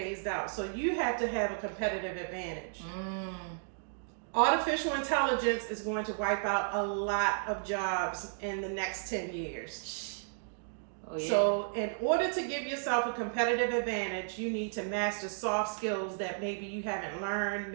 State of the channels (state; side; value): silent; left; digital silence